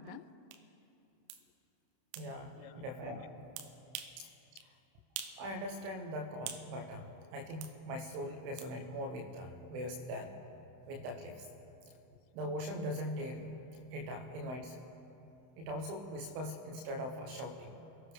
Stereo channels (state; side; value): late; left; 31 ms